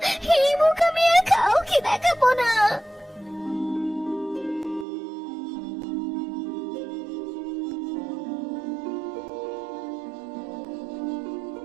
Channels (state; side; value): drops out; left; at 4.9 s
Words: এই মুখ আমি আর কাউকে দেখাবো না।